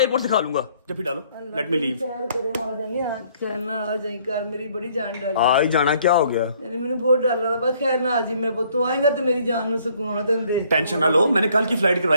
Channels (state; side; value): inverted; both; correlation -0.63